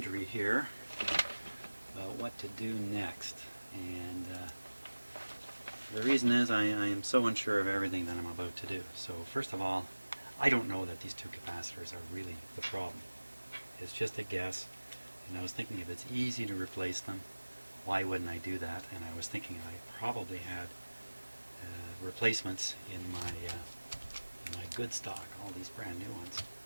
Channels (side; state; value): both; inverted; correlation -1.00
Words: here about what to do next. And the reason is I am so unsure of everything that I'm about to do. So first of all, I don't know that these two capacitors are really the problem. It's just a guess, and I was thinking if it's easy to replace them, why wouldn't I do that? And I was thinking I probably had replacements in my good stock, all these brand new ones.